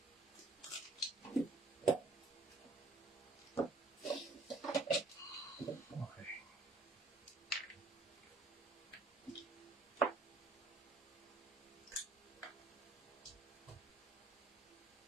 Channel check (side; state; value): left; quieter; 3.3 dB